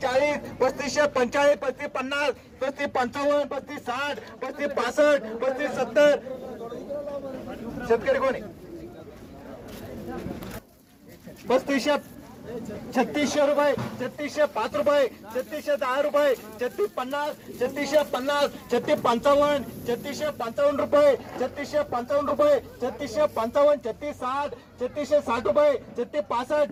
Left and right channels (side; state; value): both; identical; correlation 1.00